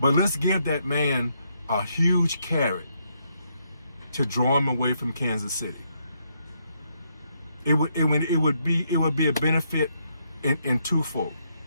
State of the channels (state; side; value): inverted; both; correlation -0.76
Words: let's give that man a huge carrot to draw him away from Kansas City. It would be a benefit in twofold.